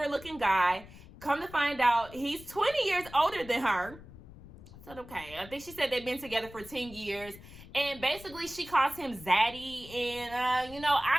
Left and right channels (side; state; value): left; noise; rumble, 18 dB below the sound